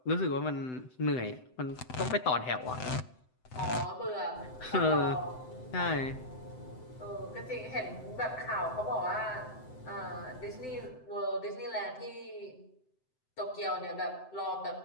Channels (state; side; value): late; right; 7.8 ms